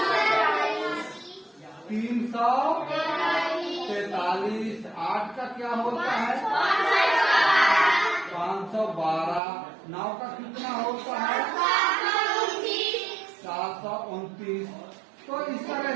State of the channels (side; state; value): left; drops out; at 9.4 s